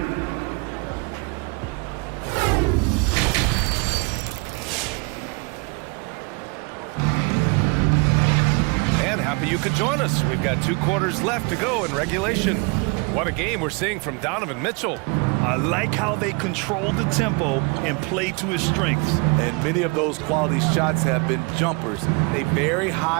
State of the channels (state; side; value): quieter; left; 31.1 dB